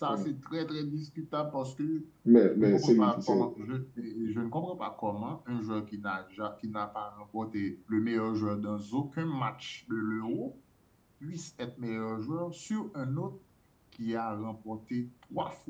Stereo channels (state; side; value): identical; both; correlation 1.00